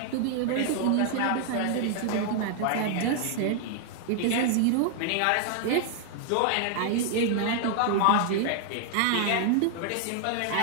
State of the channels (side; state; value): both; different; correlation 0.00